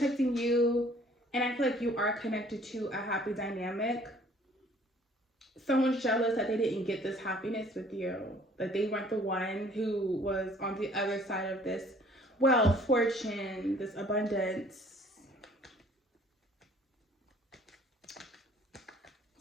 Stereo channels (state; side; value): normal; both; correlation 0.56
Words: you, and I feel like you are connected to a happy dynamic. someone's jealous that they didn't get this happiness with you. Like they weren't the one who was on the other side of this wealth, fortune, this abundance.